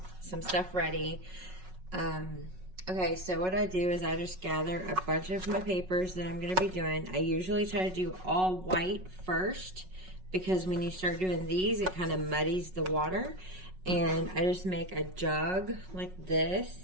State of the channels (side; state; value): left; late; 5.4 ms